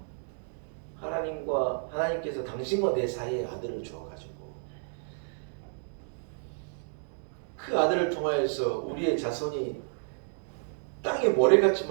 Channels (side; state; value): left; silent; digital silence